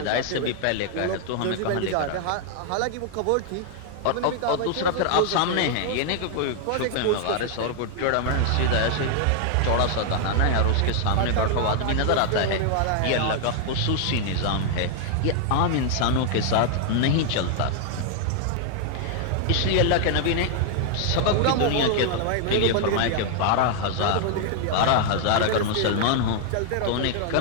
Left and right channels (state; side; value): different; both; correlation 0.00